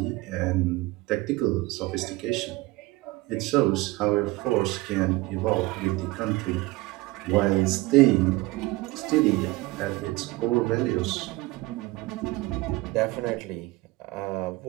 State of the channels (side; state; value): left; quieter; 20.9 dB